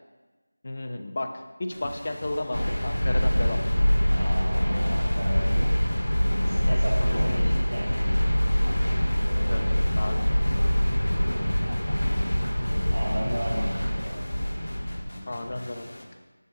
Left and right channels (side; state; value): both; inverted; correlation -0.99